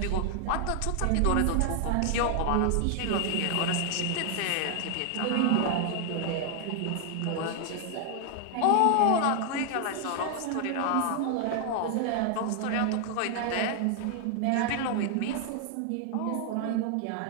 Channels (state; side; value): different; both; correlation 0.00